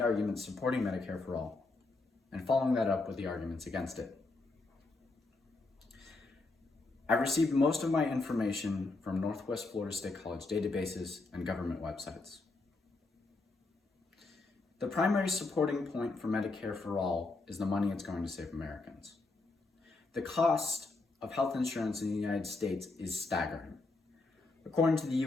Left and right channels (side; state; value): right; quieter; 3.4 dB